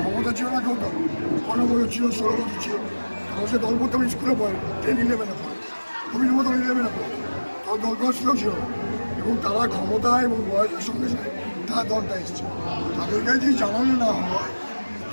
ক্ষমতা ছিল না কেউ দল 15 বছর ছিল, 16 বছর ছিল, তখন সে দল করতে আমি স্কুলে পড়ে 10-11 পড়ে, তুমি মতো 11 পড়ে, তখন দল করার সুযোগ ছিল না। এবং তারা ক্ষমতা এবং বয়সের সঙ্গে সঙ্গে তারা দলটা এসছে। তাদেরকে যদি জানানো না হয়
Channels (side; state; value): both; inverted; correlation -1.00